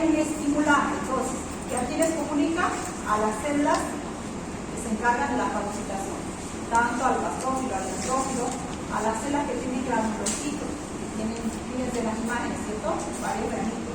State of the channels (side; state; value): both; identical; correlation 1.00